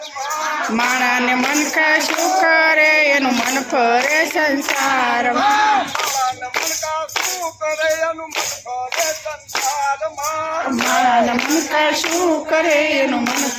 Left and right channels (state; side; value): identical; both; correlation 1.00